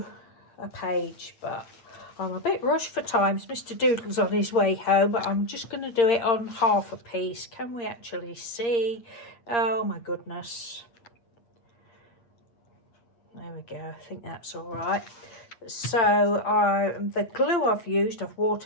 a page. But I'm a bit rushed for time. Mr. Doodle's on his way home, but I'm just going to do it on half a piece. Can we actually see? Oh my goodness. There we go. I think that's all right. So the glue I've used, I've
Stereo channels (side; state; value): right; late; 8.6 ms